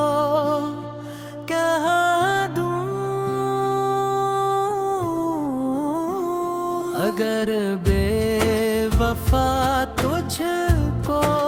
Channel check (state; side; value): identical; both; correlation 1.00